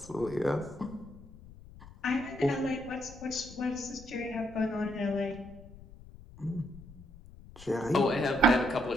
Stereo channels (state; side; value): noise; left; rumble, 18 dB below the sound